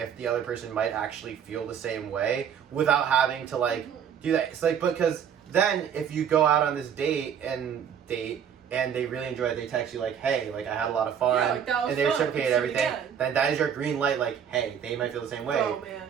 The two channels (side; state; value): left; quieter; 8.2 dB